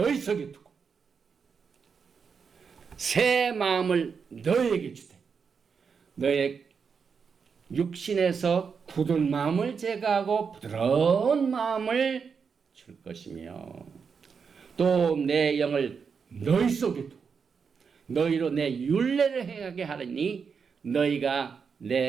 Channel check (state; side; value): quieter; left; 6.0 dB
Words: 속에 두고 새 마음을 너에게 주되 너의 육신에서 굳은 마음을 제거하고 부드러운 마음을 줄 것이며 또 내 영을 너희 속에 두고 너희로 내 율례를 행하게 하리니 너희가